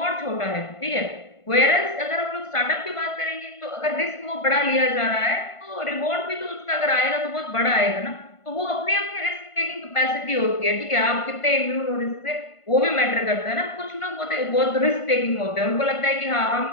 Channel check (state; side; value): late; right; 1.5 ms